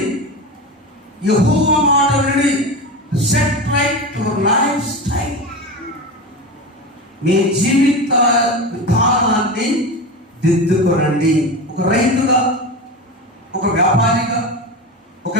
యెహోవా మాట వినండి. Set right your lifestyle. మీ జీవిత విధానాన్ని దిద్దుకోనండి. ఒక రైతుగా, ఒక వ్యాపారిగా, ఒక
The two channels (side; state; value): both; normal; correlation 0.24